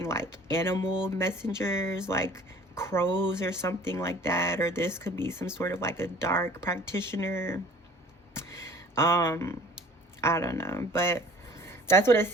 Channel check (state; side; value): normal; both; correlation 0.50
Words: like animal messengers, like crows or something like that, or this could be some sort of like a dark practitioner. I don't know, but that's what it